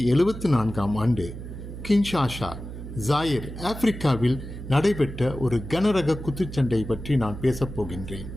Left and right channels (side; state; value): right; noise; hum, 10 dB below the sound